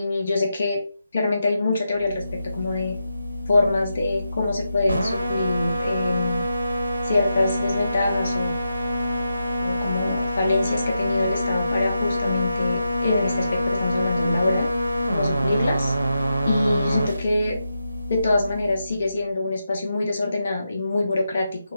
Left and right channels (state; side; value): inverted; both; correlation -0.87